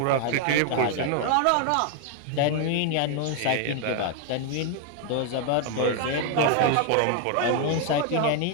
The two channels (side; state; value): both; different; correlation 0.00